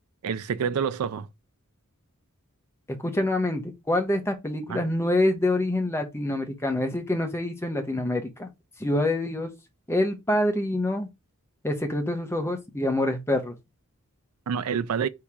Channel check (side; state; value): both; normal; correlation 0.70